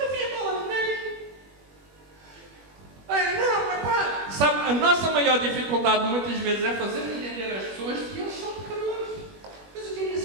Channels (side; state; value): left; late; 21 ms